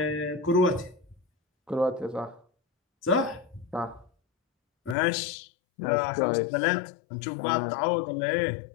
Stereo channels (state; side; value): drops out; right; at 5.0 s